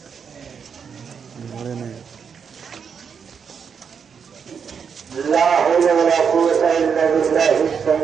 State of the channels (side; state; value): left; quieter; 6.6 dB